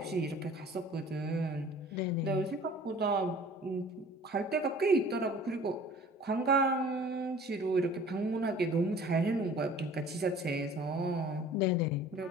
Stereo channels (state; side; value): normal; both; correlation 0.48